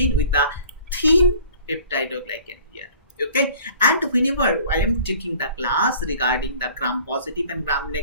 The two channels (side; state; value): both; inverted; correlation -0.48